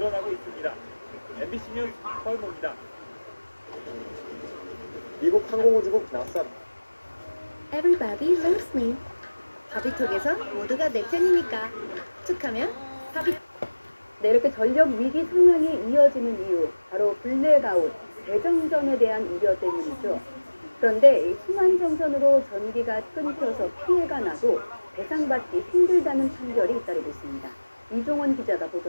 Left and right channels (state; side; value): inverted; both; correlation -1.00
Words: 있습니다. MBC 뉴스 서울모입니다. 미국 항공우주국 나사 Everybody loves me. 바비톡에서 모두가 내 편이니까 툭하면 바비. 네, 이렇게 전력 위기 상황이 이어지는 이유 바로 블랙아웃, 대정전에 대한 우려 때문이죠. 그런데 이 순환 정전으로 전기가 끊겨서 피해가 나도 배상받기 힘들다는 판결이 잇따르고 있습니다. 이종원 기자가